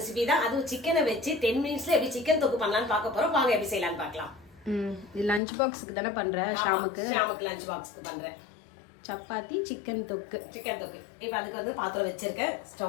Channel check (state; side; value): drops out; right; at 5.4 s